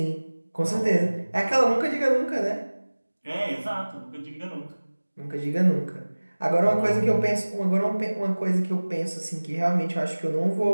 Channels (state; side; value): inverted; both; correlation -1.00